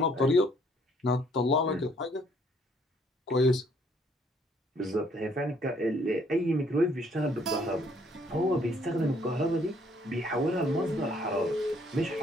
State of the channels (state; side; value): normal; both; correlation 0.64